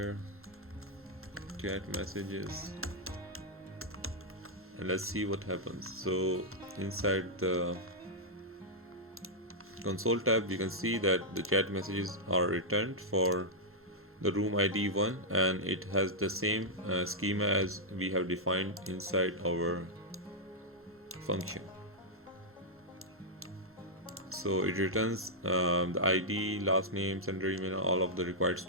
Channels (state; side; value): normal; both; correlation -0.06